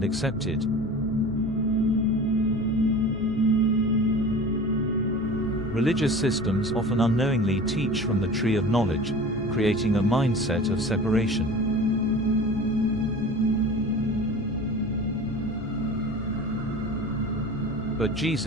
accepted. Religious systems often unknowingly teach from the tree of knowledge, creating a mindset of separation. But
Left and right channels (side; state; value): both; normal; correlation 0.38